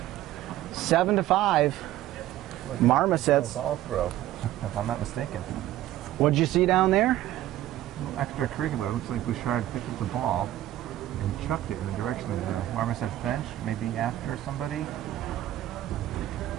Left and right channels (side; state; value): left; quieter; 14.0 dB